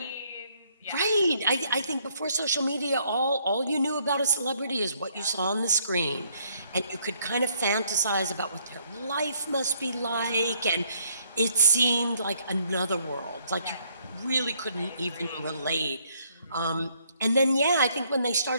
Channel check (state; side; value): inverted; both; correlation -0.68